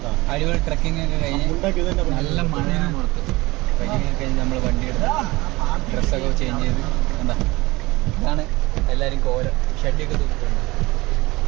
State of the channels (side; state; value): left; quieter; 21.5 dB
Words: അടിപൊളി ട്രക്കിംഗ് ഒക്കെ കഴിഞ്ഞ് നല്ല മഴയാണ് പുറത്ത്. ട്രക്കിംഗ് ഒക്കെ കഴിഞ്ഞ് നമ്മൾ വണ്ടി എടുത്ത് ഡ്രസ്സൊക്കെ ചേഞ്ച് ചെയ്ത് എന്താ ഇതാണ് എല്ലാരും കോലം ഷെഡിയൊക്കെ തൂക്കിട്ടുണ്ട്.